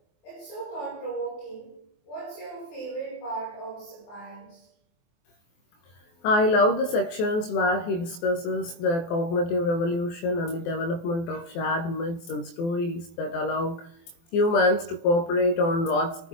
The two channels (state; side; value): late; right; 24 ms